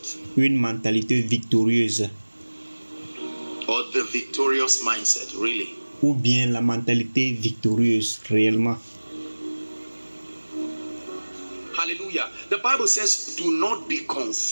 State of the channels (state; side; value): inverted; both; correlation -1.00